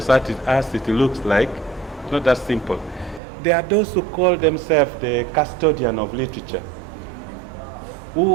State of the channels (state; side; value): drops out; left; at 3.2 s